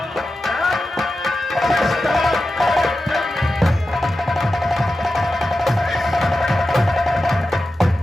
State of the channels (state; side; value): normal; both; correlation 0.92